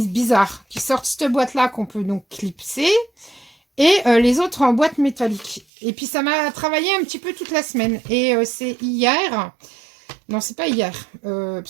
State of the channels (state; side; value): drops out; left; at 5.7 s